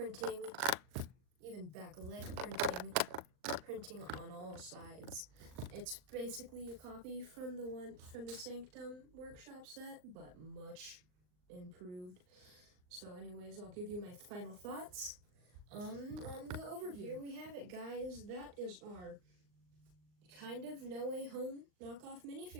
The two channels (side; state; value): left; late; 39 ms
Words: even back leg printing on all sides. It's basically a copy from the Sanctum Workshop set, but much improved. So anyways, I'll give you my final thoughts on the overview. Here we have it, guys. That is our kind of No Way Home knockoff